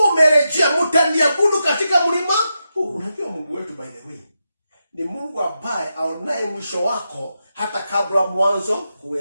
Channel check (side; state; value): both; inverted; correlation -0.87